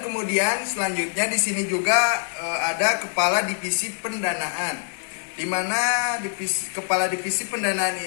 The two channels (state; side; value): silent; right; digital silence